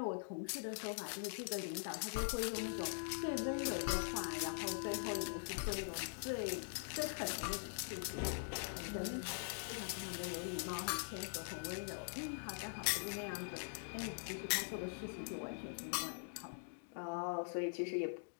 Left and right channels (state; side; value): silent; right; digital silence